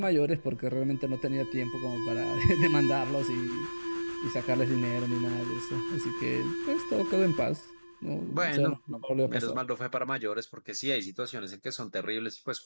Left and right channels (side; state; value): both; inverted; correlation -1.00